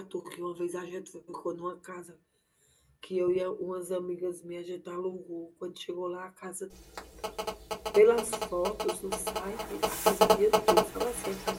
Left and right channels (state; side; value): identical; both; correlation 1.00